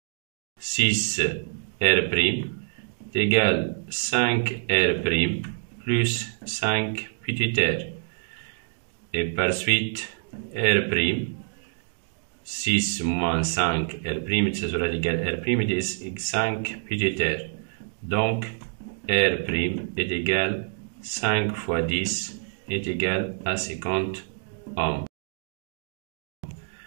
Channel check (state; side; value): silent; left; digital silence